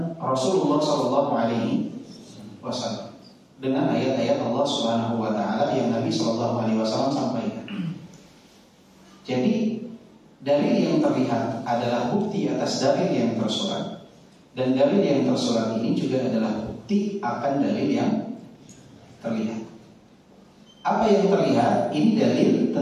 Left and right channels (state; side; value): identical; both; correlation 1.00